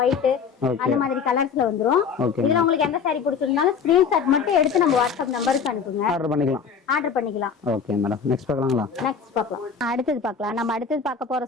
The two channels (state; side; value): quieter; right; 6.2 dB